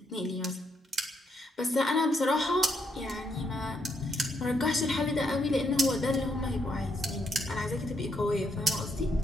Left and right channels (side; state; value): both; normal; correlation 0.76